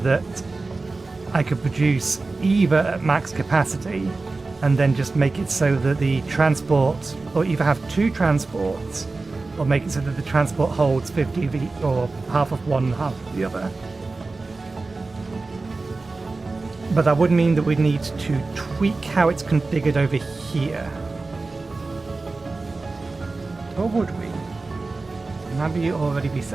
I could produce either at max capacity and then just make it so that the transport, or either have two transports, or make it so that the transport holds 50 of each, or half of one, half of the other. But that would mean that we'd need to tweak how it's configured over here. Or would we? Maybe already be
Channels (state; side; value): quieter; left; 3.6 dB